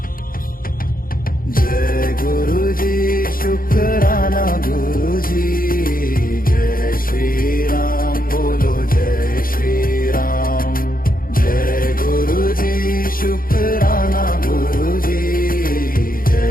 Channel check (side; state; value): right; late; 0.41 ms